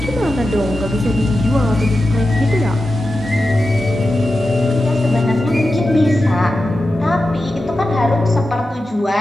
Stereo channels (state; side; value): normal; both; correlation 0.91